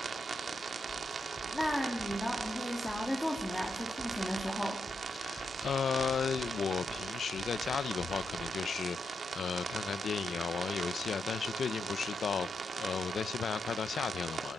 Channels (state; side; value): normal; both; correlation 0.83